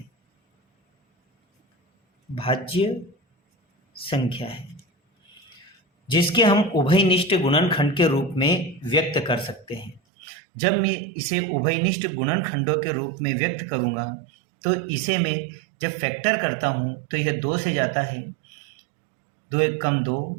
भाज्य संख्या है जिसके हम उभयनिष्ठ गुणनखंड के रूप में व्यक्त कर सकते हैं। जब मैं इसे उभयनिष्ठ गुणनखंडों के रूप में व्यक्त करूंगा तो इसे मैं जब फैक्टर करता हूं तो यह 2 से जाता है, 2 एक कम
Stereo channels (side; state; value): left; drops out; at 10.0 s